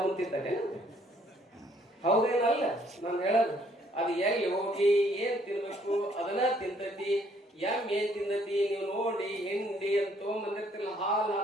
ತಿಂತಾರೆ, ಹೌದೇನಲ್ಲ? ನಾನು ಹೇಳೋದು ಅದು ಎಲ್ಲಿ ಹೋಗಿ ಏನ್ ತಿನ್ಬೇಕು ಅದನ್ನ ತಿಂತತಿ. ಎಮ್ಮೆ ಏನ್ ತಿಂದತಿ ನೀವು ನೋಡಿ, ಹಿಂಡಿ ಅಂತ ತೊಗೊಂಬಂದಿರ್ತಿಲ್ಲ, ಹಾಲು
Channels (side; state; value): both; normal; correlation 0.65